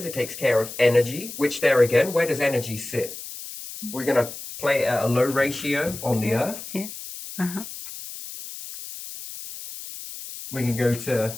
it takes care of energy, which there again, where does energy sit? We're going to play it at a low ratio on the Earth. Yeah. Uh-huh. We can go to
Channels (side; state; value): left; noise; hiss, 11 dB below the sound